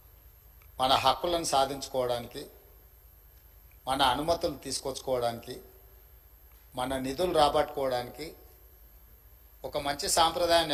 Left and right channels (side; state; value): both; identical; correlation 1.00